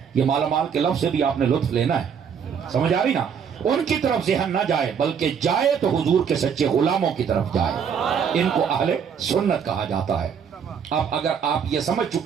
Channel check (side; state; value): left; quieter; 7.2 dB